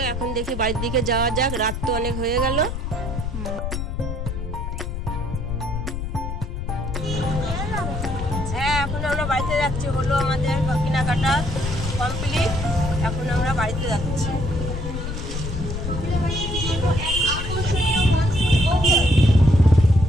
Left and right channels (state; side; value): noise; left; rumble, 5 dB below the sound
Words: এখন দেখি বাড়ির দিকে যাওয়া যাক, রাত তো অনেক হয়ে গেল। হ্যাঁ, এখন আমরা বাড়িতে যাচ্ছি, হলো আমাদের কেনাকাটা কমপ্লিট। এখন আমরা বাড়িতে যাচ্ছি।